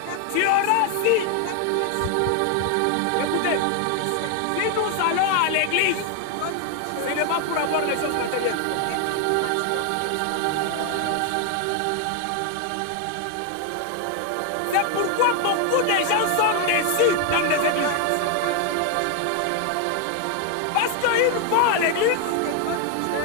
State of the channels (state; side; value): different; both; correlation 0.01